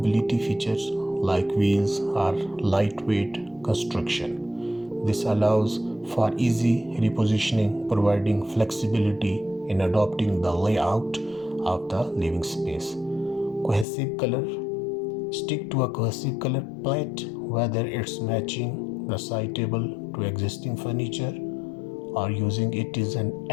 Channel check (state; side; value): drops out; right; at 13.9 s